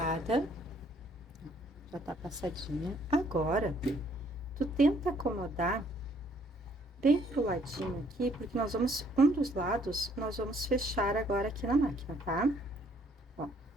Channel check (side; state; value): both; normal; correlation 0.64